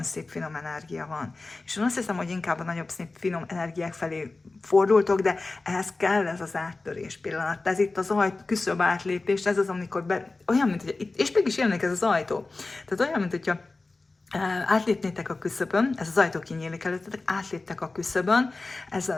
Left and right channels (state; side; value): quieter; right; 3.5 dB